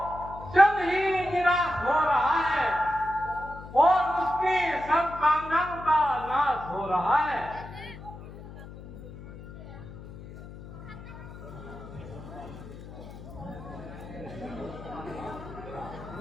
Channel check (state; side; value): noise; left; hum, 14 dB below the sound